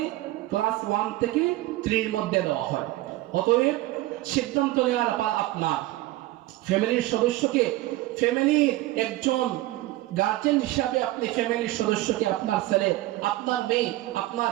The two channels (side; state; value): left; quieter; 17.6 dB